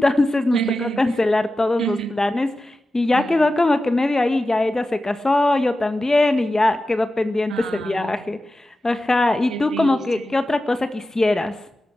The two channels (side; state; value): both; normal; correlation 0.93